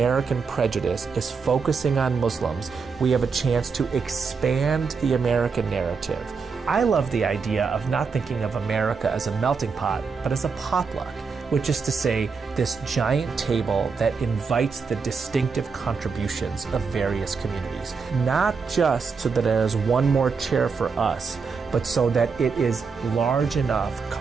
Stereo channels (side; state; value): left; quieter; 5.2 dB